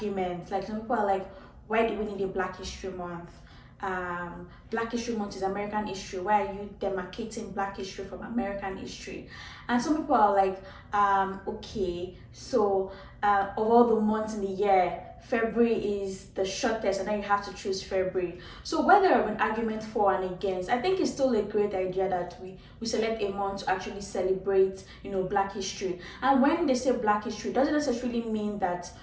Like some people are like, why do we need a Black History Month? Black History Month is American history. Why are you demarcating Black history from American history? And some people are like, okay, so of all the months in the year, February is the shortest, and then you have to choose February. So whether there have been arguments for and against, I think it's still a great idea that we select a month to actually celebrate, Black history. And when they say Black history, it doesn't necessarily mean that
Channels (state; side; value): identical; both; correlation 1.00